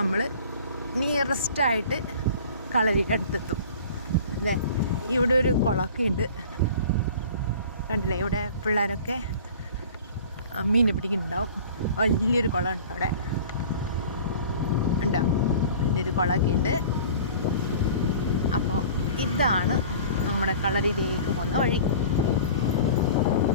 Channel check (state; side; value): inverted; both; correlation -0.43